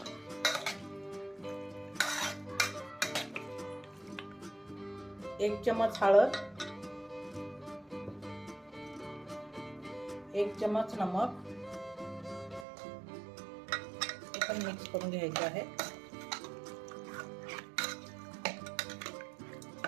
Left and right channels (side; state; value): left; drops out; at 12.7 s